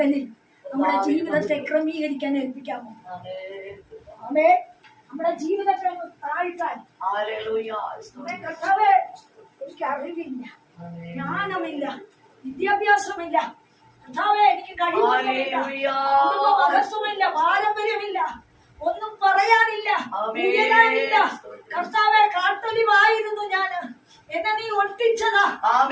നമ്മുടെ ജീവിതത്തെ ക്രമീകരിക്കാൻ ഏൽപ്പിക്കാമോ? നമ്മുടെ ജീവിതത്തെ താഴ്ത്താൻ. കർത്താവേ, എനിക്ക് അറിവില്ല, ജ്ഞാനമില്ല, വിദ്യാഭ്യാസമില്ല. കർത്താവേ, എനിക്ക് കഴിവില്ല, മഹത്വമില്ല, പാരമ്പര്യമില്ല, ഒന്നും പറയാനില്ല, ഉയരാനില്ല. കർത്താവെ, കാട്ടൊലിവായിരുന്നു ഞാന്. എന്നെ നീ ഒട്ടിച്ചതാ.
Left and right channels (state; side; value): identical; both; correlation 1.00